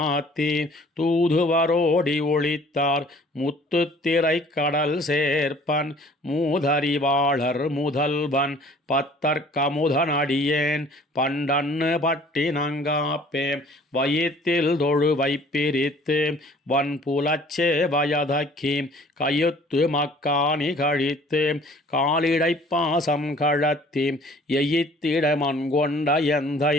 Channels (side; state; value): both; normal; correlation 0.53